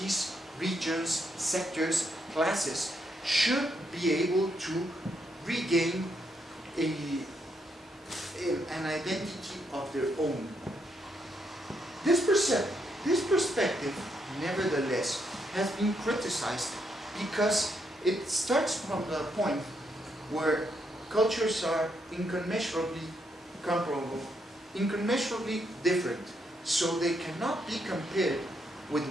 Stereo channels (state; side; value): normal; both; correlation 0.77